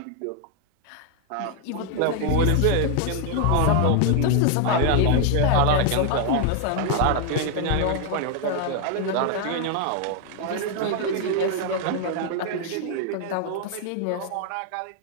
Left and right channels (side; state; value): both; different; correlation 0.00